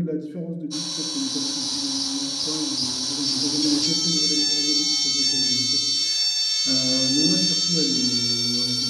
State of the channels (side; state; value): both; identical; correlation 1.00